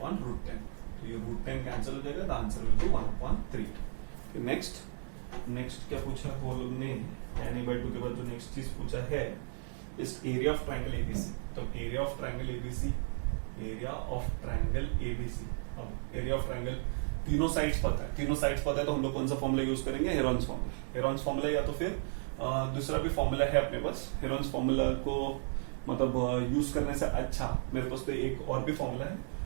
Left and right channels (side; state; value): left; silent; 55 dB below the other